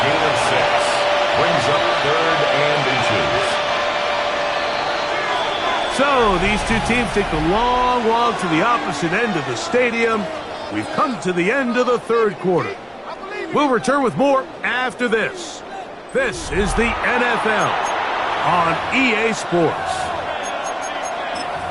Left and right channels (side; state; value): both; identical; correlation 1.00